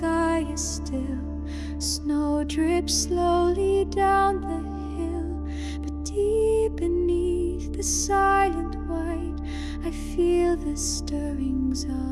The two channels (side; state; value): both; identical; correlation 1.00